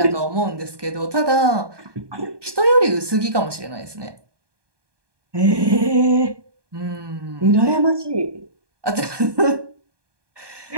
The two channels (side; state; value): left; late; 1.2 ms